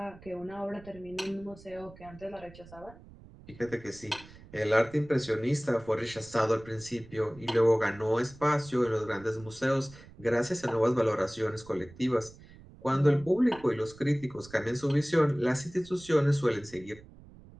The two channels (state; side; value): noise; right; rumble, 21 dB below the sound